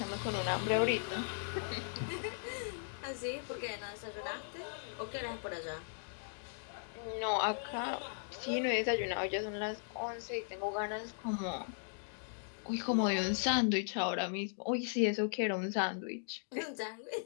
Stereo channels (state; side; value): silent; right; digital silence